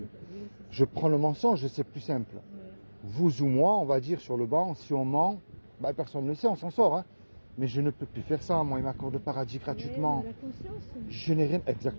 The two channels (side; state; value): both; inverted; correlation -1.00